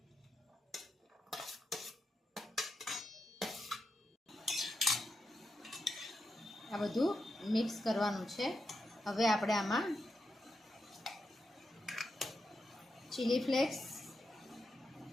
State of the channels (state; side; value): normal; both; correlation 0.86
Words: આ બધું મિક્સ કરવાનું છે। હવે આપણે આમાં ચીલી ફ્લેક્સ,